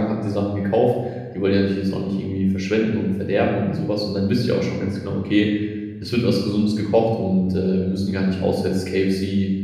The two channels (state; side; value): identical; both; correlation 1.00